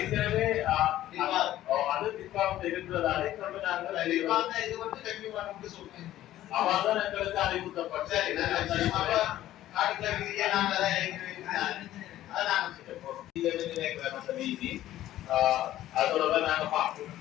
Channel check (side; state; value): right; quieter; 13.8 dB